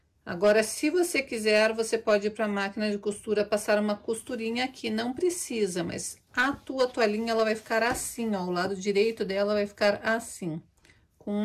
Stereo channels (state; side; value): identical; both; correlation 1.00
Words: Agora, se você quiser, você pode ir para a máquina de costura, passar uma costurinha aqui. Não precisa, mas a tua toalhinha, ela vai ficar assim, ó. O lado direito dela vai ficar assim, com